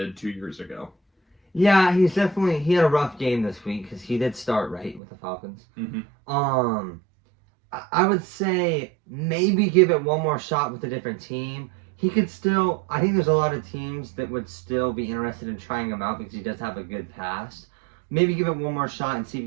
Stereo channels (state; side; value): drops out; left; at 5.0 s